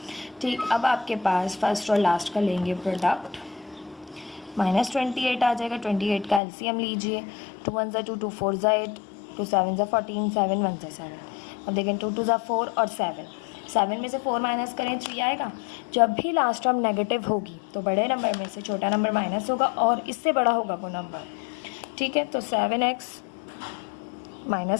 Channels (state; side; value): drops out; right; at 6.4 s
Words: ठीक, अब आपके पास फर्स्ट और लास्ट का लेंगे प्रोडक्ट, माइनस 28 आ जाएगा, 28 का एलसीएम लीजिए, 2 1 ज़ा 2, 2 4 ज़ा 8, 2 7 ज़ा 14, 7 1 ज़ा 7। अब देखें 2 2 ज़ा 4 और 7, 7 में से 4 माइनस करें 3 आएगा। जब भी लास्ट टर्म नेगेटिव होगी तो बड़े नंबर में से छोटा नंबर माइनस होगा और इससे बड़ा होगा वो नंबर, ठीक है। तो 7x